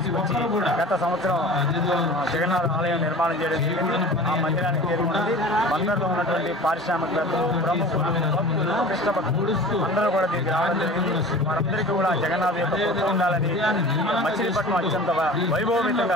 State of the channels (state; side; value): normal; both; correlation 0.39